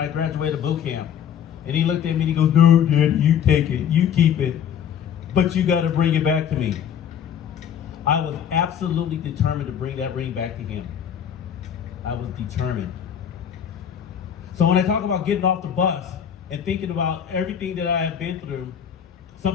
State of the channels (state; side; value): quieter; right; 8.7 dB